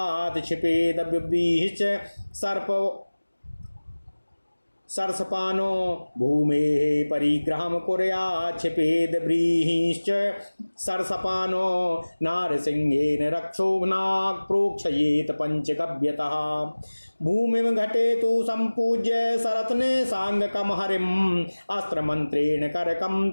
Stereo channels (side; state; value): both; inverted; correlation -1.00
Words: क्षिपेदव्यभिश्च सरसपानो भूमेः परिग्रहं कुर्यात् क्षिपेद व्रीहिश्च सरसपानो नारसिंहेन रक्षोघ्नाक् प्रोक्षयेत पंचगव्यतः। भूमिं घटेतु सम्पूज्य सरत्ने सांगकं हरिम् अस्त्रमन्त्रेण करकं